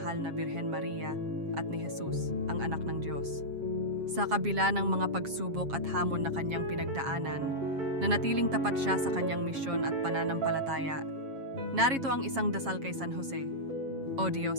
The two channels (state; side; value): late; left; 7.4 ms